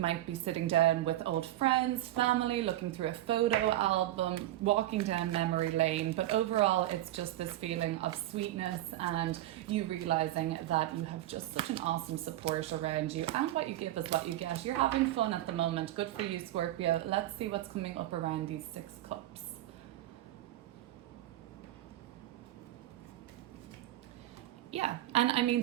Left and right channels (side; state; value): left; quieter; 14.6 dB